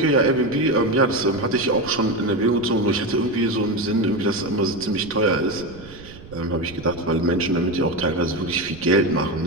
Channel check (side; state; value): right; noise; rumble, 18 dB below the sound